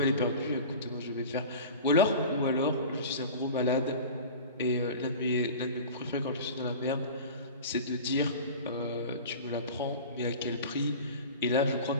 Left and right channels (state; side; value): inverted; both; correlation -0.35